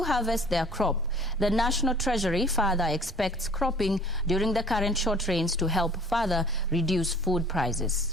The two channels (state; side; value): normal; both; correlation 0.50